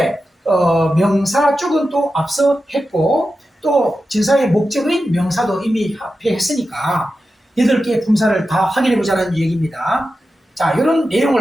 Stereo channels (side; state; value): both; normal; correlation 0.91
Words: 명사 쪽은 또 앞서 했고 또 전사의 목적인 명사도 이미 합해했으니까 8개의 품사를 다 확인해보자는 얘기입니다. 자, 이런